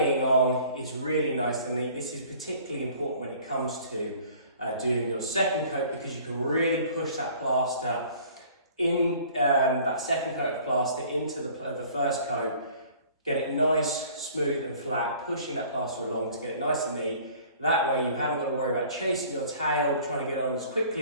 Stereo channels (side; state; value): both; inverted; correlation -0.51